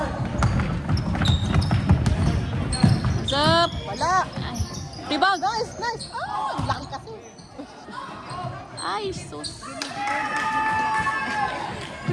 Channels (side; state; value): both; identical; correlation 1.00